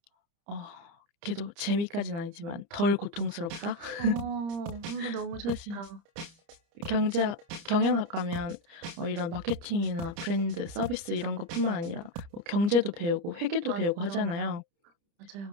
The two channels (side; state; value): left; late; 29 ms